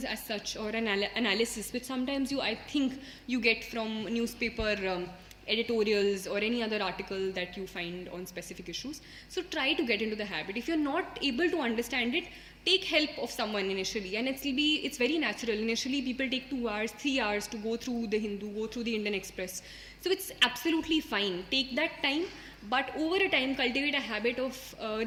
as such, or an analysis, which sometimes I think you get from newspaper editorials or any other article that you find on specific issues. So try to get into the habit. If you're not able to understand it, take help of someone initially, and it's very natural. Initially people take 2 hours, 3 hours to go through the Hindu, go through the Indian Express. So it's absolutely fine. Take that time, but over a time cultivate a habit of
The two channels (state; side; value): identical; both; correlation 1.00